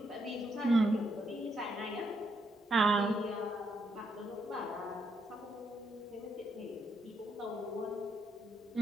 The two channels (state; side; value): normal; both; correlation 0.77